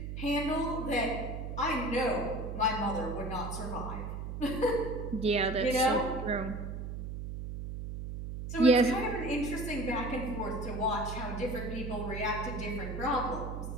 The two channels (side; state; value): right; noise; hum, 6 dB below the sound